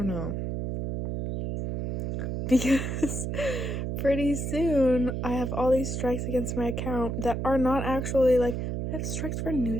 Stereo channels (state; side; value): noise; right; hum, 2 dB below the sound